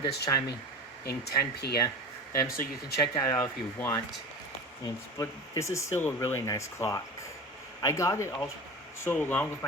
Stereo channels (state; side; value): normal; both; correlation 0.31